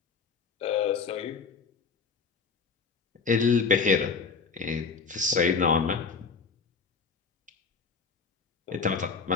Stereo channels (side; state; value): right; quieter; 5.0 dB